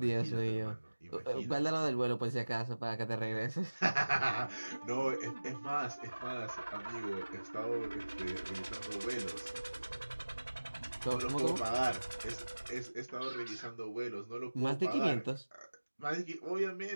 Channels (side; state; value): both; inverted; correlation -1.00